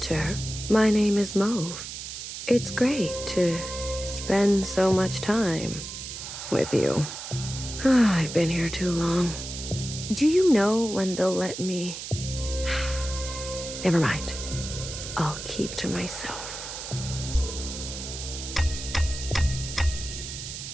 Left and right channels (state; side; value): noise; right; hiss, 8 dB below the sound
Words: my name is Mauve. It's great to spend so much time with you. I've been here too long. Do you know when they'll let me? Never mind. I'll keep to myself.